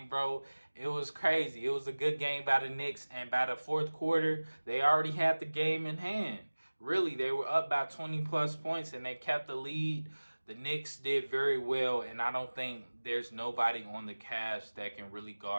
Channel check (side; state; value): both; inverted; correlation -1.00